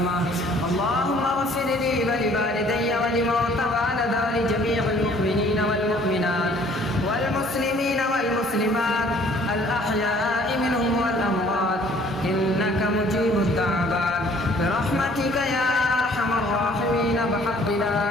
اللهم اغفر لي ولوالدي ولموتى والد ولجميع المؤمنين والمؤمنات والمسلمين والمسلمات الأحياء منهم والأموات إنك مجيب الدعوات برحمتك يا أرحم الراحمين بحق لا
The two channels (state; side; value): normal; both; correlation 0.57